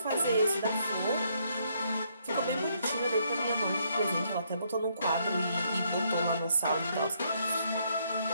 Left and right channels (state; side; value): inverted; both; correlation -0.72